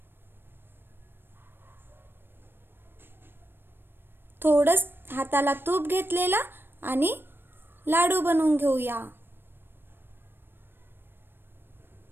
थोडंच हाताला तूप घेतलेला आणि लाडू बनवून घेऊया.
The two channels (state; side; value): late; left; 0.10 ms